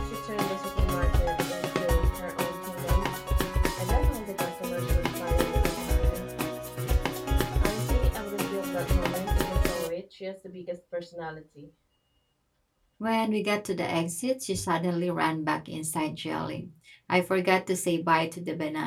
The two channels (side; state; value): both; identical; correlation 1.00